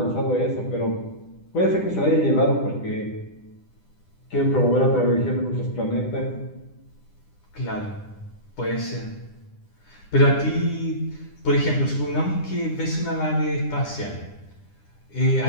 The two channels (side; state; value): right; late; 10 ms